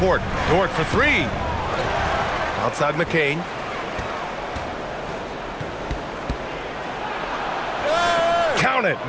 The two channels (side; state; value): both; identical; correlation 1.00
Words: Dort for 3. Outside McCain. Count it.